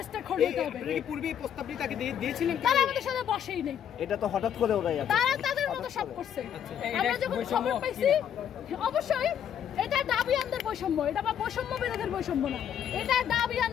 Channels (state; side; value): quieter; right; 9.2 dB